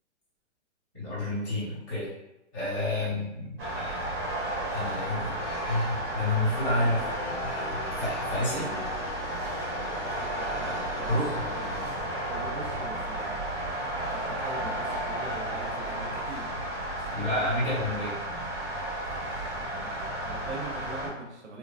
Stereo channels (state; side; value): normal; both; correlation -0.16